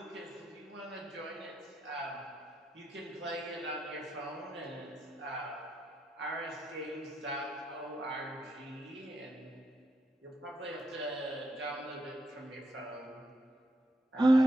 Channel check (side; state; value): both; normal; correlation 0.81